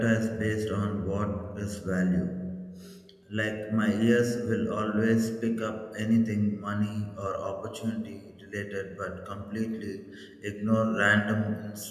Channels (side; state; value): both; identical; correlation 1.00